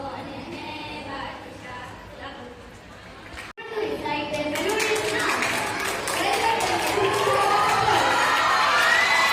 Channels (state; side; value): identical; both; correlation 1.00